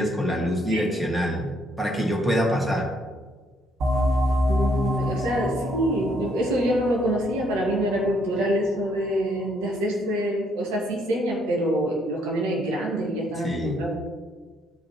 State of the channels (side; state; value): both; normal; correlation 0.70